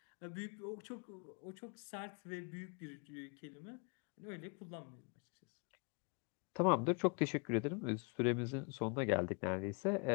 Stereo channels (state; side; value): quieter; right; 34.1 dB